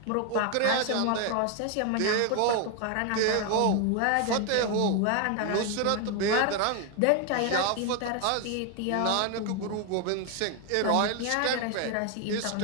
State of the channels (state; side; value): different; both; correlation 0.01